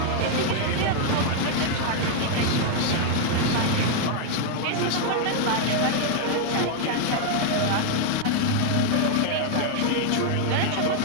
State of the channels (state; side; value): different; both; correlation 0.00